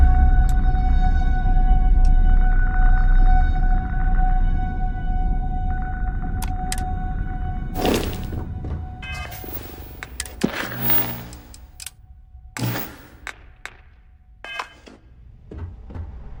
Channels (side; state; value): both; identical; correlation 1.00